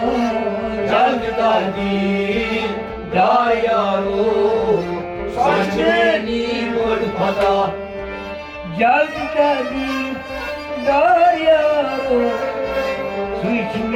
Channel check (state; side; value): identical; both; correlation 1.00